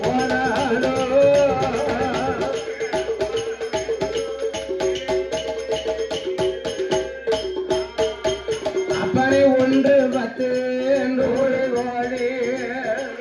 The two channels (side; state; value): both; identical; correlation 1.00